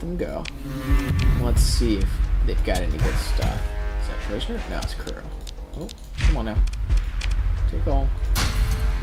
go. Let's see if they've got any good stuff. Is that prisoner? No, it's crew. Oh, come on now. Take all. I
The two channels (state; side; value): identical; both; correlation 1.00